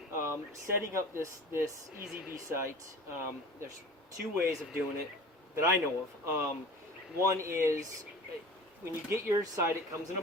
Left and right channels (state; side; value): normal; both; correlation 0.40